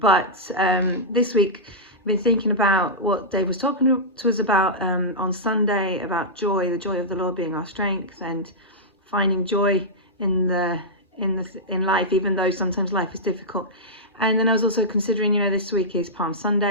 this week I've been thinking about what Dave was talking to us about on Sunday, about joy, the joy of the Lord being our strength, and finding joy in life, even though sometimes life is difficult. And then I was also considering, this week is Palm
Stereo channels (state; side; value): normal; both; correlation -0.11